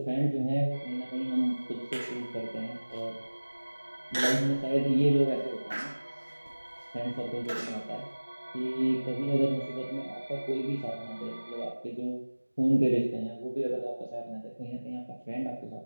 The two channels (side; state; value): both; inverted; correlation -1.00